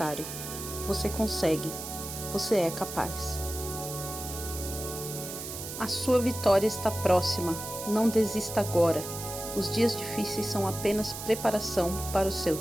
Você consegue. Você é capaz. A sua vitória está próxima. Não desista agora. Os dias difíceis são apenas preparação para o seu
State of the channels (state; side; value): noise; right; hiss, 8 dB below the sound